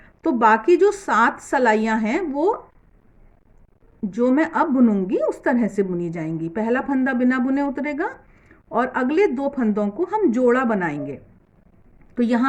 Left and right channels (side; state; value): both; identical; correlation 1.00